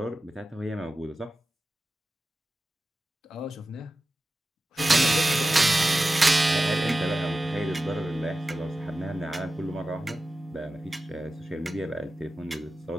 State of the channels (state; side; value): normal; both; correlation 0.94